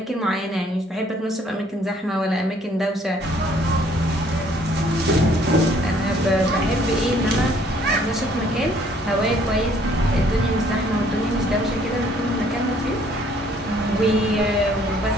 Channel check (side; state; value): both; normal; correlation 0.61